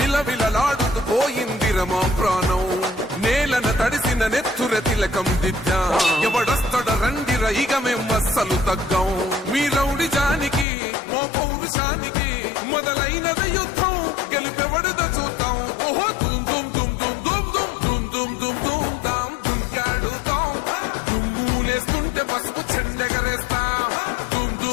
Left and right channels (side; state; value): right; drops out; at 10.7 s